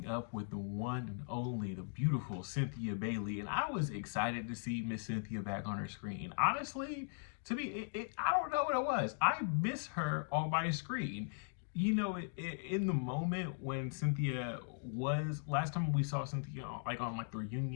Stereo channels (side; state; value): right; silent; digital silence